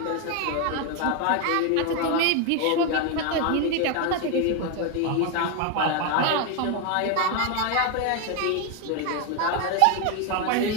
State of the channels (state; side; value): different; both; correlation 0.01